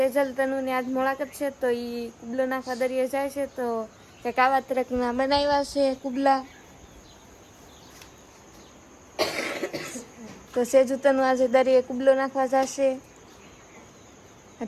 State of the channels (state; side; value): identical; both; correlation 1.00